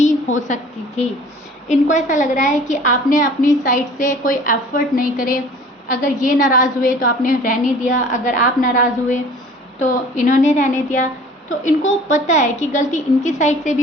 हो सकती थी। इनको ऐसा लग रहा है कि आपने अपनी साइड से कोई एफर्ट नहीं करे। अगर ये नाराज़ हुए तो आपने रहने दिया, अगर आप नाराज़ हुए तो इन्होंने रहने दिया। तो इनको पता है कि गलती इनकी साइड से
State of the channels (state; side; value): normal; both; correlation 0.48